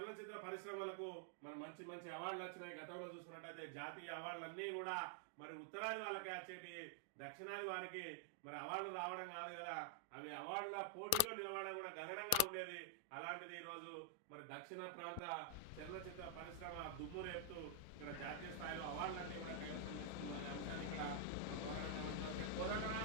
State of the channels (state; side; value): different; both; correlation 0.00